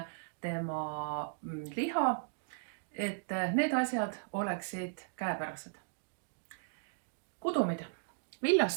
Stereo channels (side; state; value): left; silent; digital silence